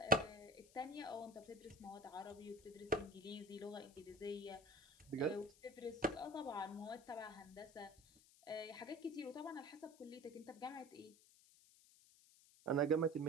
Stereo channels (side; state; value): left; noise; hiss, 24 dB below the sound